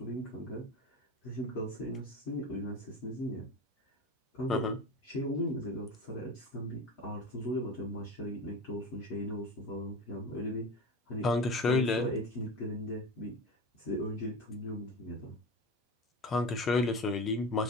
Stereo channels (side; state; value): both; normal; correlation 0.29